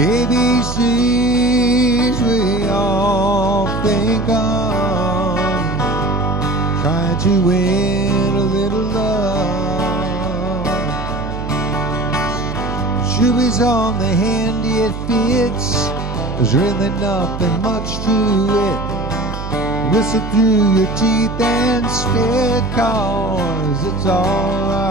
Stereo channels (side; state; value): right; noise; hum, 7 dB below the sound